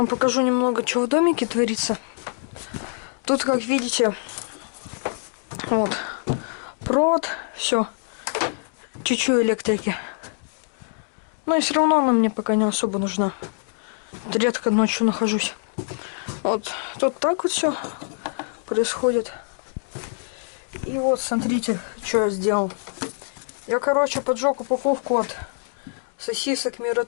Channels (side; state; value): right; silent; 62 dB below the other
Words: покажу немного, что в домике творится. Тут, как видите, вот, провод, все, чуть-чуть электрики. Но и все равно она мне пока не особо нужна. Редко ночью нахожусь. Вот тут так вот все происходит. И вот смотрите, что я сделал. Я, короче, поджег упаковку от сосисок